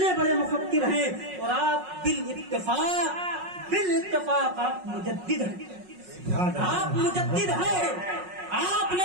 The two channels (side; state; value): left; late; 5.5 ms